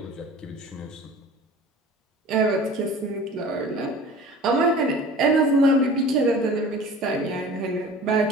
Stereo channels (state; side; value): normal; both; correlation 0.42